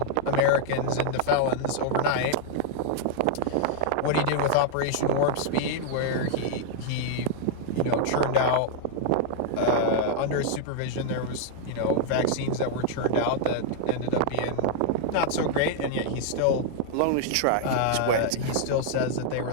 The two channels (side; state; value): both; different; correlation -0.01